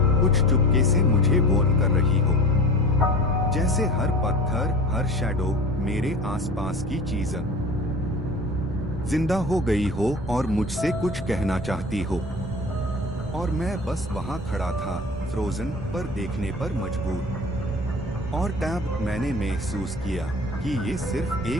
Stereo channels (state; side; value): normal; both; correlation 0.38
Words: कुछ चुपके से मुझे वार्न कर रही हो, जैसे हर पत्थर, हर शैडो मेरे आसपास की चीज जिंदा हो गई हो और मुझसे कुछ कहना चाहती हो। और मैं बस वहां खड़ा था, फ्रोजन, पर देखने पर मजबूर। और तब मैंने महसूस किया कि ये सिर्फ